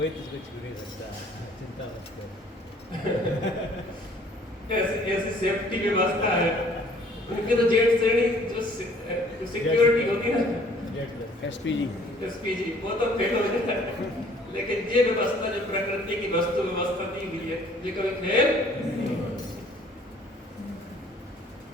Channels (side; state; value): both; normal; correlation 0.57